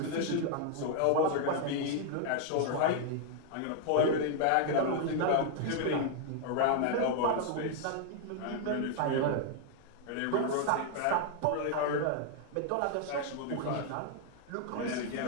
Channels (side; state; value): both; different; correlation 0.00